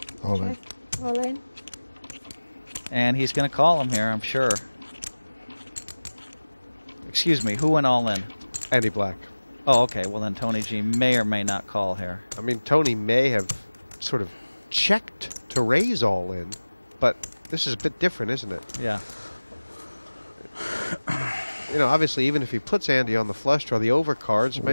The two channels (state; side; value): inverted; both; correlation -1.00